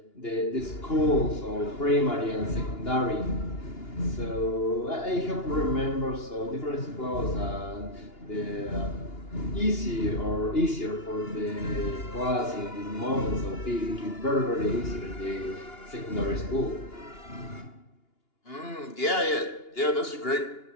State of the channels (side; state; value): right; late; 2.8 ms